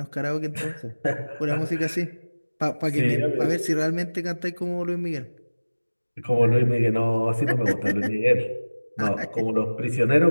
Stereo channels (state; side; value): inverted; both; correlation -1.00